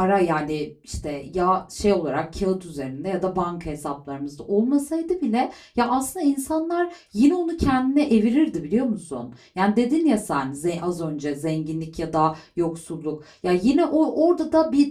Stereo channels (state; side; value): identical; both; correlation 1.00